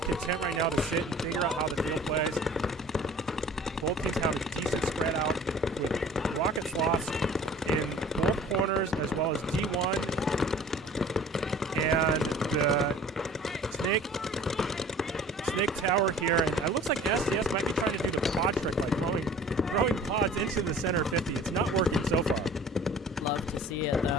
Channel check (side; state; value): both; normal; correlation 0.47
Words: content right now to sit and figure out how the field plays. Both teams have a decent spread out with Rockets lost in both corners as well as D1 and the snake tower here. And it looks like SDS might be trying to do the pod trick, like throwing pods into the center 50. It's not working so far. Love to see it